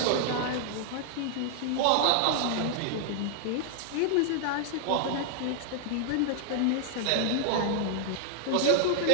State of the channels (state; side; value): different; both; correlation -0.01